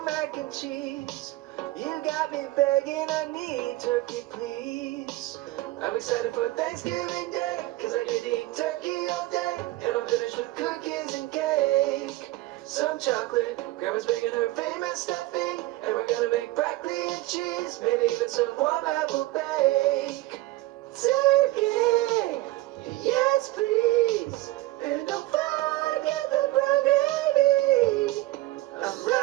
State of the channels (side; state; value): left; quieter; 18.2 dB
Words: mac and cheese. You got me begging, I need turkey, please. I'm excited for Thanksgiving Day, cause I get to eat turkey all day. And I'm finished with cookies and cake. Some chocolate, grandma's making her famous stuffing. And we're gonna make broccoli and cheese, maybe even some warm apple bake. Turkey, yes please. And don't forget the brown gravy. I'm